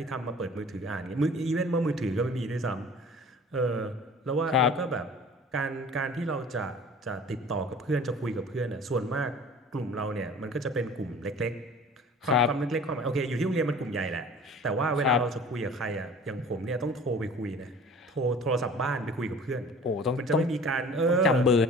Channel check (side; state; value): both; normal; correlation 0.45